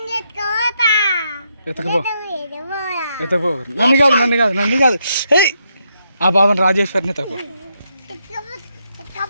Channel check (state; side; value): inverted; both; correlation -0.79